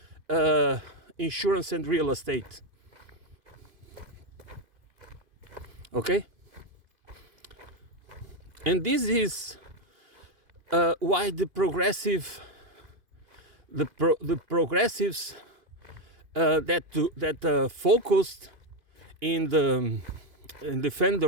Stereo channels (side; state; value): left; late; 2.5 ms